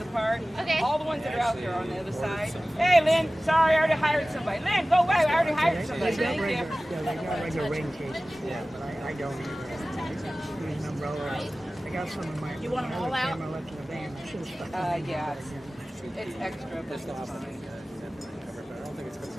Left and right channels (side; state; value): both; normal; correlation 0.97